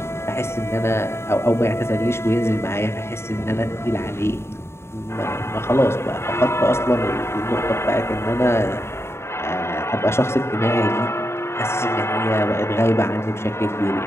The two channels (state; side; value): late; right; 0.12 ms